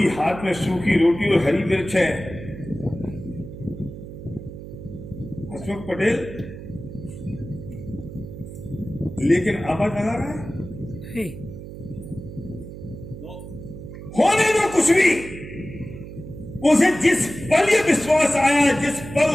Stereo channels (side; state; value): right; noise; hum, 12 dB below the sound